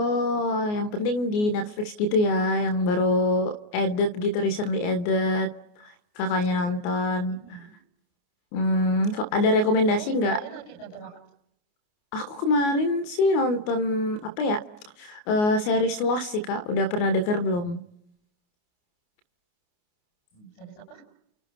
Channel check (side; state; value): right; late; 28 ms